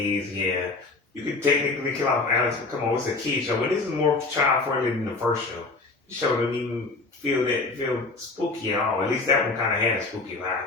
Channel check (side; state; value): right; quieter; 3.6 dB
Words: yeah, you could technically kill off Alex, but come on, it's a kid show. But this is more child friendly than the first show. The show didn't even feel spooky at all. At least that one kind of had a spooky